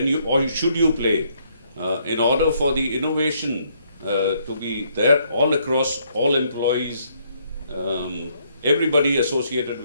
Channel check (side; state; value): both; inverted; correlation -0.70